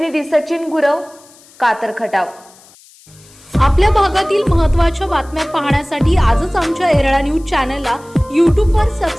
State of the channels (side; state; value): left; noise; hiss, 26 dB below the sound